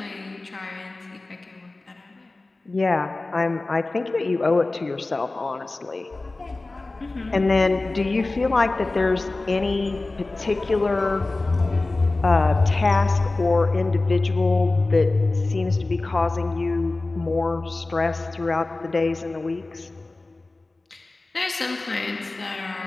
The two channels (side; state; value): right; quieter; 3.2 dB